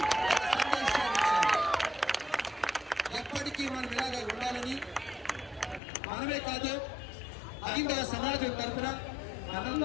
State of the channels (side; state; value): right; drops out; at 5.8 s